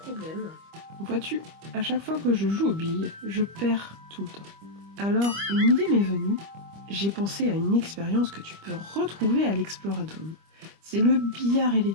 Vois-tu, à chaque fois que je joue aux billes, je perds tout le temps. Alors, une idée m'est venue. J'ai pensé à une expérience que tu peux retrouver à l'Exploradome. C'est le billard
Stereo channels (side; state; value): left; late; 25 ms